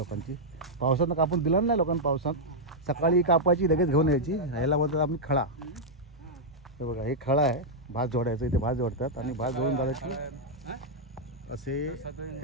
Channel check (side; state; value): both; normal; correlation -0.05